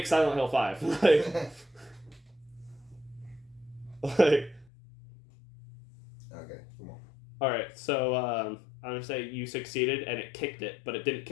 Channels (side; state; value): right; drops out; at 4.7 s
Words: Silent Hill 5. Okay, come on. Alright, so I'm gonna say you succeeded and it kicked it, but it didn't